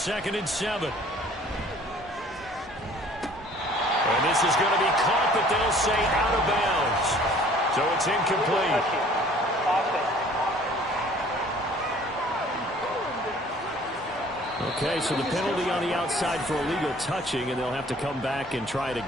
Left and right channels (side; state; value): both; normal; correlation 0.53